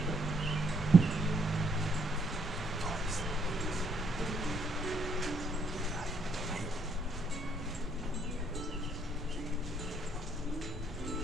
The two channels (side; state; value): both; normal; correlation 0.70